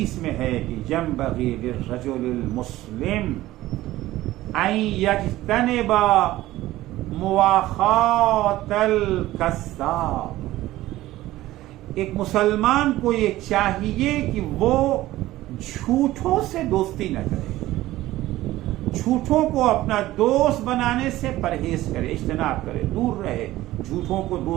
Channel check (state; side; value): quieter; left; 16.2 dB